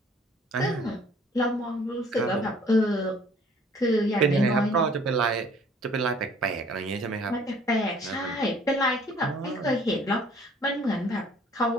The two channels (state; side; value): normal; both; correlation 0.56